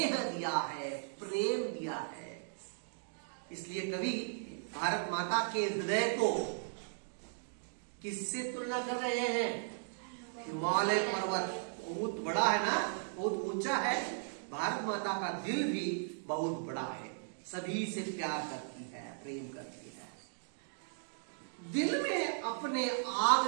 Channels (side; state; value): left; silent; digital silence